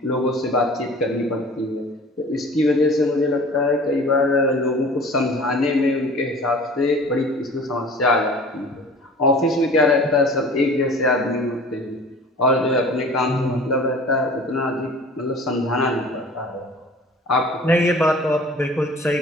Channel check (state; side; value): normal; both; correlation 0.44